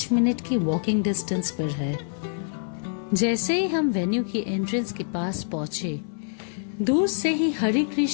मिनट की वॉकिंग डिस्टेंस पर है। जैसे ही हम वेन्यू की एंट्रेंस के पास पहुंचे, दूर से ही हरे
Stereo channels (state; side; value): silent; right; digital silence